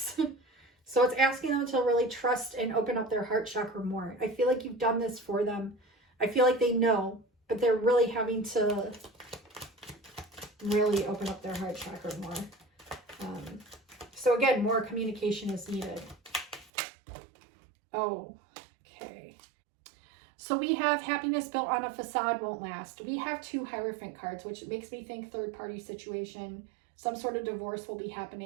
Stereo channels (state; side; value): drops out; left; at 16.7 s